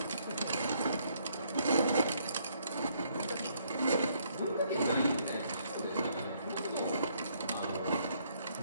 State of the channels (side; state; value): both; inverted; correlation -0.69